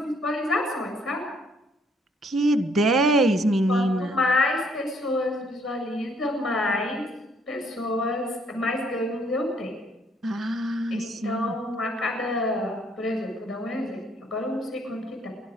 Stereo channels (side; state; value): both; normal; correlation 0.66